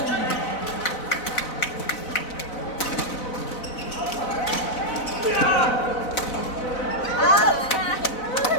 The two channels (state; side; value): late; right; 4.0 ms